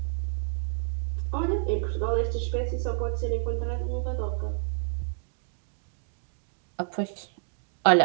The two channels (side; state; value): left; silent; digital silence